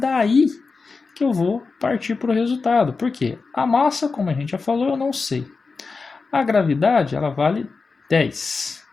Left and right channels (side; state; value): right; quieter; 4.4 dB